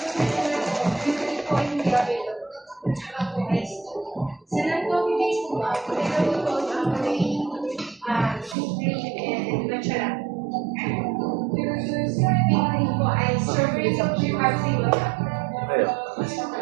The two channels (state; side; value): drops out; left; at 8.6 s